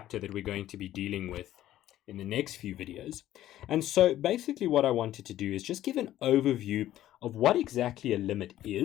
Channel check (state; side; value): quieter; right; 13.3 dB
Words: that we're going to be dealing with in the next few videos. And so basically what I wanted to do is just give an overview of what exactly a limit